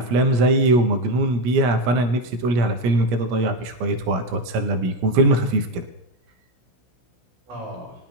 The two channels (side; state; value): left; late; 17 ms